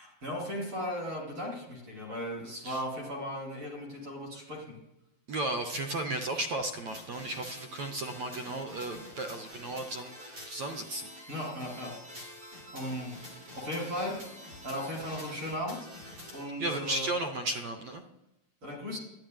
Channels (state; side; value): late; left; 9.5 ms